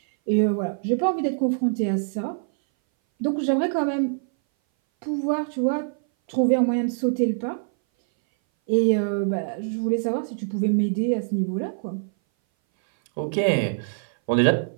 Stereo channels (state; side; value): silent; left; 59 dB below the other